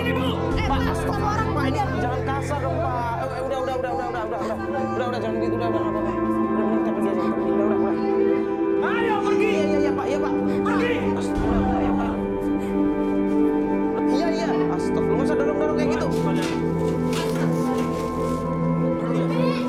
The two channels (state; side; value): identical; both; correlation 1.00